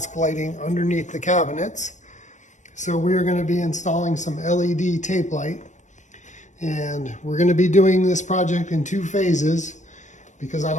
lighting underneath the cabinets. So we're going to be installing some LED tape light. And we're going to be doing this project in 2 phases because I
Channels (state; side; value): late; right; 0.35 ms